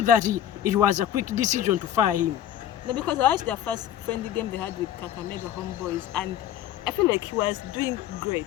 that it was a quick decision to fire him? No, because I watched their first friendly game they had with Kakamega Homeboys, and I feel like he was doing great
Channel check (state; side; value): quieter; right; 11.2 dB